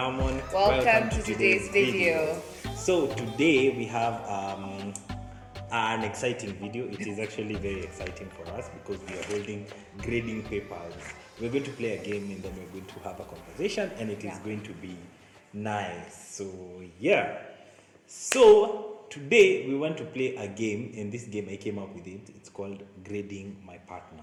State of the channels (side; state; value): both; identical; correlation 1.00